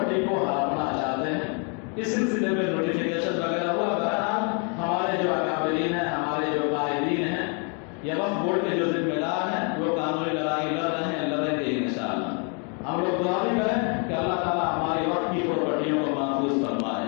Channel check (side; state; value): right; quieter; 37.7 dB